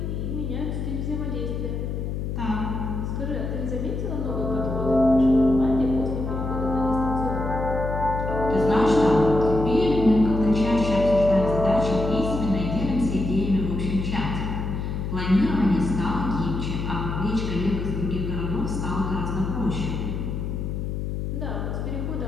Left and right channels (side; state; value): left; noise; hum, 3 dB below the sound